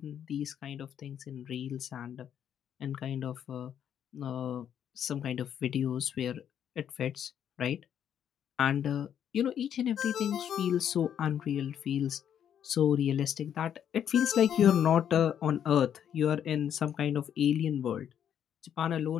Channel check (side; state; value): right; quieter; 9.2 dB